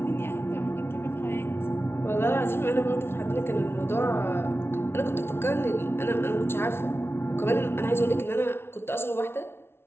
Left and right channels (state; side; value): late; right; 0.12 ms